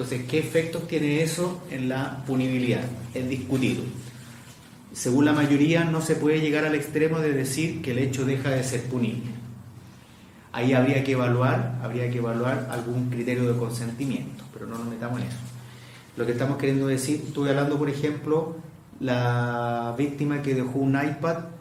¿qué efectos tiene eso en la punibilidad? Es discutido. Según la mayoría, no se puede llegar al extremo de decir que el hecho deja de ser punible. Ahí habría que evaluar algún criterio de consentimiento, pero no nos metamos en eso. Lo que estamos queriendo decir, estuve hablando, por ejemplo, la víctima que dejó un iPad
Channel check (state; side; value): identical; both; correlation 1.00